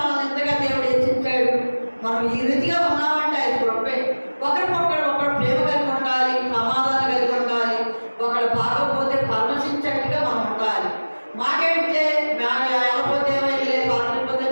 ఎంతగా దేవుడు హెచ్చించాడు. మనం ఈ రీతిగా ఉన్నామంటే ఆయన కృపే. ఒకరు ప్రేమ కలిగి ఉండాలి, సమాధానం కలిగి ఉండాలి. ఒకడు బాగోపోతే పరమశించేట్టుగా మనం ఉండాలి. మాకేంటే వెళ్ళపోతే ఏమైతే బాగలేకపోతే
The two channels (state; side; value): inverted; both; correlation -1.00